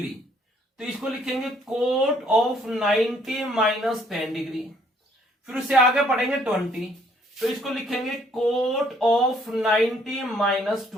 तो इसको लिखेंगे कोट ऑफ 90 माइनस 10 डिग्री। फिर उससे आगे पढ़ेंगे 20, तो इसको लिखेंगे कोट ऑफ 90 माइनस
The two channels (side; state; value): both; normal; correlation 0.65